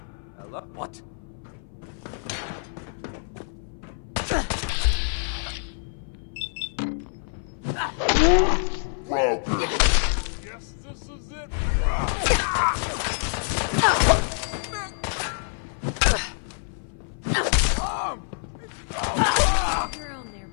Hello? What? Yes, this is it. Your own there,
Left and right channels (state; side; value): silent; right; 56 dB below the other